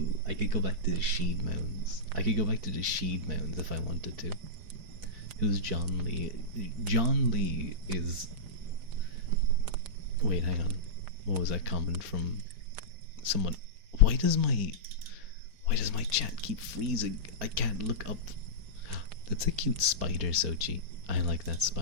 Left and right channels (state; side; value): late; left; 4.5 ms